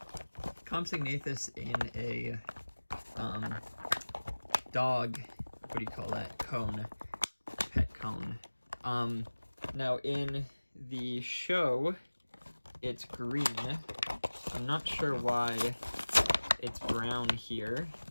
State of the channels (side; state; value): both; inverted; correlation -1.00